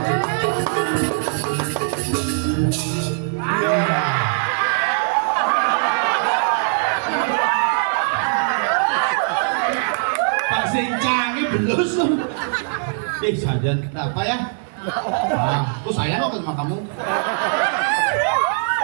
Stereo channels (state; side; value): silent; left; digital silence